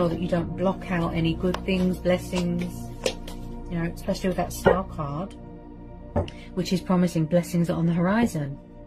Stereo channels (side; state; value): both; identical; correlation 1.00